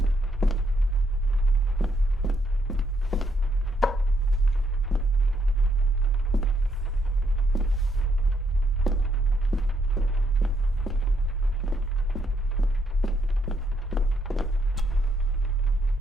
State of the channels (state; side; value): normal; both; correlation 0.75